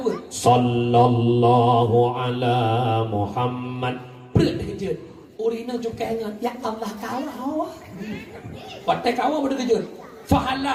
Sallallahu ala Muhammad. Berat dia kejut. Urina juga ingat. Ya Allah kawah. Patai kawah pada kejut.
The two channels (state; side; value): identical; both; correlation 1.00